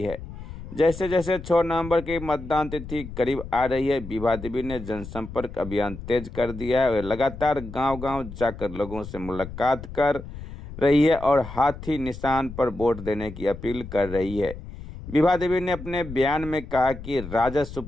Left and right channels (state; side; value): noise; left; rumble, 12 dB below the sound